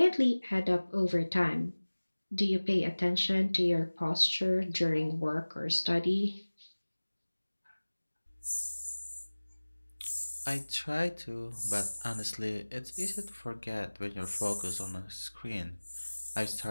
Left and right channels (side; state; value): both; inverted; correlation -1.00